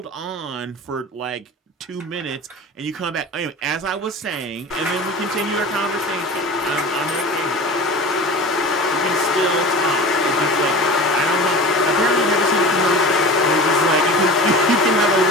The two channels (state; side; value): normal; both; correlation 0.35